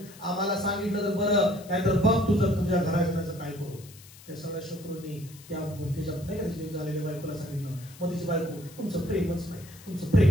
आम्हाला सांगितलं तर बरं, नाहीतर बघ तुझ्या घराचं काय करू. त्या सगळ्या शत्रूंनी त्याच्या नाही का झालेल्या बायकोला सांगितलं. मग तिची बायको तुमचं प्रेमच नाही, तुमचं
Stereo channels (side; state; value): left; noise; hiss, 21 dB below the sound